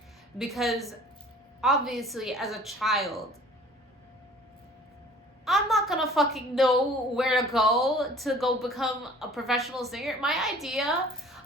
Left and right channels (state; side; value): normal; both; correlation 0.49